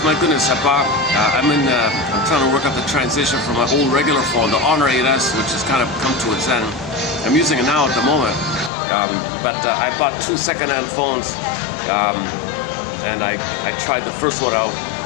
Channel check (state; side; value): drops out; right; at 8.7 s